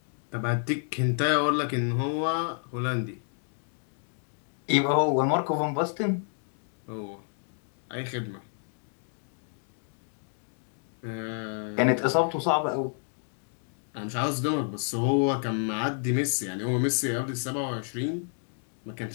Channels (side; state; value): right; silent; 58 dB below the other